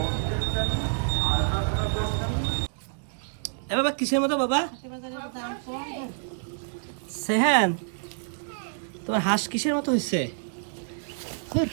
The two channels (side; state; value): left; silent; digital silence